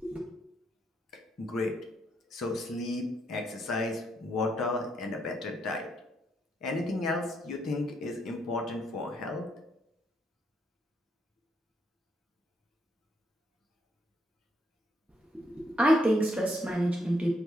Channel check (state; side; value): normal; both; correlation 0.75